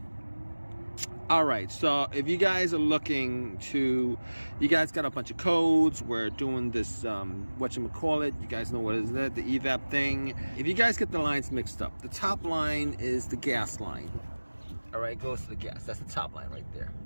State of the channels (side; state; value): both; inverted; correlation -1.00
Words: all right, so if you guys are looking to, you guys got a bunch of codes. We're doing this, whatchamacallit, you guys know what is that, the Evap thing. If you guys get the lines mixed up, the top line is the gas line. All right, goes to the gas. That's the top line right there.